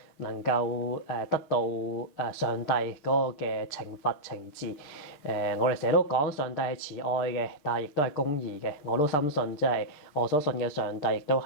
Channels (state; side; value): late; right; 6.6 ms